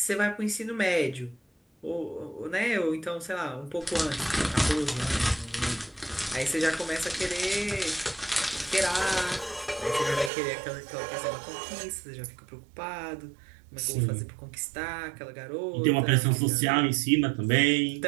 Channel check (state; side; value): drops out; left; at 10.3 s